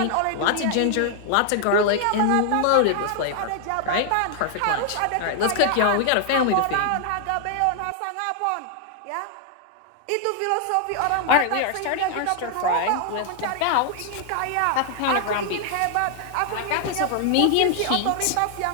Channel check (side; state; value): both; different; correlation 0.00